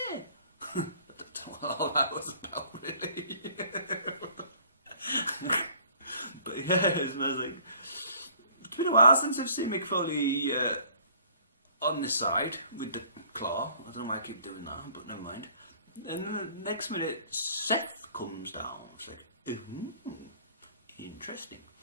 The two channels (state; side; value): inverted; both; correlation -0.55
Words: don't know what all that was about, really. But yes, and I was like, it's been a while since I've seen Mick Foley on this side with the claw. I don't know why I keep doing that, but never mind. And then the next minute, Seth comes down. It's like, interesting.